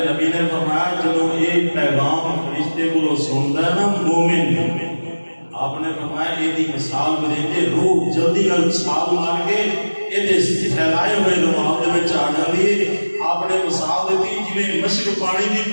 نبی نے فرمایا جدوں یہ پیغام فرشتے کو سنتا ہے نا مومن آپ نے فرمایا یہ دی مثال دے روح جلدی نال چھال مار کے یہ پھیلائے ہوئے رومال دے وچ آ جاندی ہے. آپ نے مثال دیتی جویں مشک پانی دی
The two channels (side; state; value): both; inverted; correlation -1.00